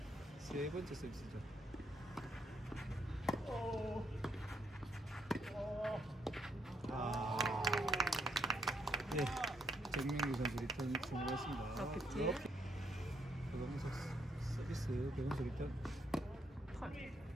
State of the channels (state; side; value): normal; both; correlation 0.74